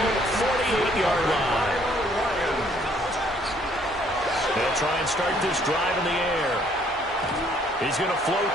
48-yard line. They'll try and start this drive in the air. He's going to float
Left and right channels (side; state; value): both; normal; correlation 0.63